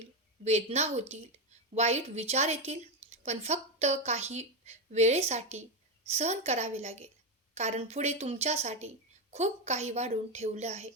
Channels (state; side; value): normal; both; correlation 0.10